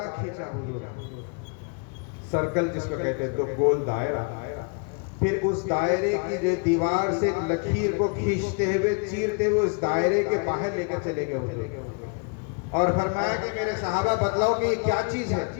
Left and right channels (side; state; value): right; quieter; 36.7 dB